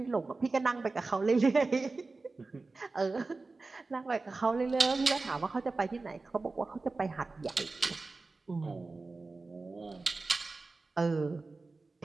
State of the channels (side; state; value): left; quieter; 3.7 dB